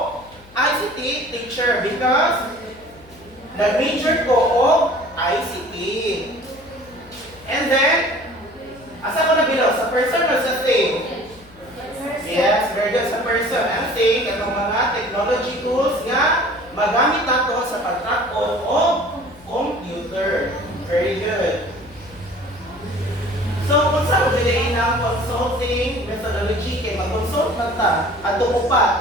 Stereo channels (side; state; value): left; noise; hum, 24 dB below the sound